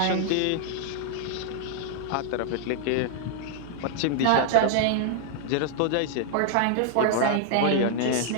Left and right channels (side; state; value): both; different; correlation 0.00